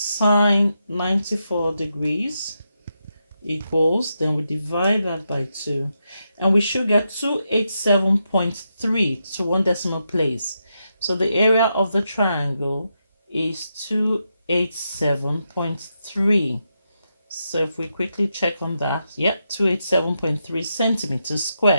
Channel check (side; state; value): both; inverted; correlation -0.85